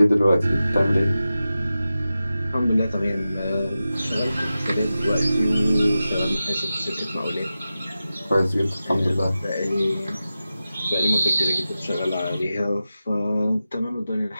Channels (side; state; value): both; inverted; correlation -0.93